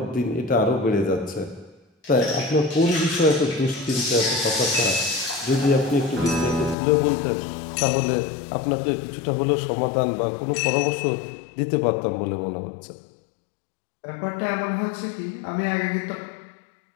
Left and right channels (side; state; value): right; drops out; at 6.8 s